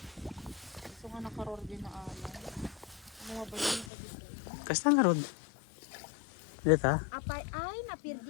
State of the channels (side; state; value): right; drops out; at 3.9 s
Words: Gusto nga nakaror din na ano. Mga bayan pa dito. Kasta nga garod. Dito. Apay ay